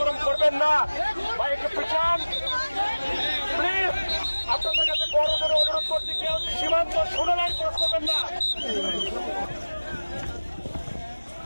করবেন না। ভাই একটু পিছান প্লিজ। আপনাদের কাছে বড় করে অনুরোধ করছি, কেউ সীমান্ত 16 লাইন ক্রস করবেন না।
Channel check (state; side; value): inverted; both; correlation -1.00